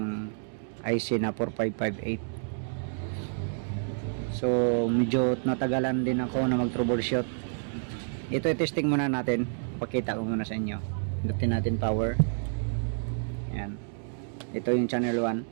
IC na 4558. So medyo natagalan din ako na mag troubleshoot. Ito i-testing muna natin. Pakita ko muna sa inyo. Pindutin natin power. Ayan. Ito yung channel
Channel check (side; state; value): left; silent; digital silence